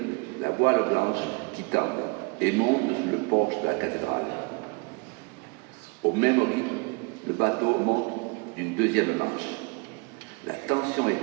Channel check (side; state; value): left; quieter; 30.4 dB